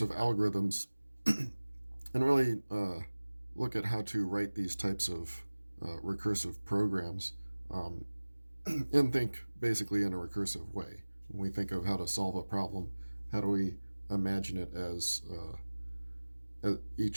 algorithms and really look at how to write these types of recursive programs um, and think basically in a recursive way. When we think of how to solve a problem, how do we imagine it as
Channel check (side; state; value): both; inverted; correlation -1.00